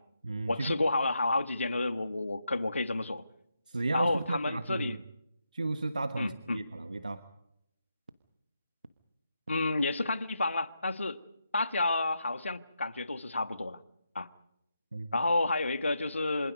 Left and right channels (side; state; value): both; inverted; correlation -0.83